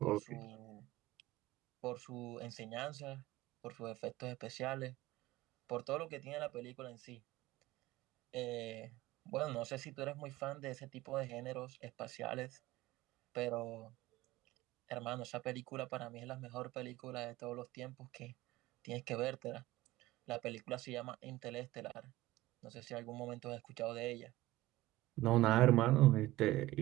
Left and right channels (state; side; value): quieter; left; 17.3 dB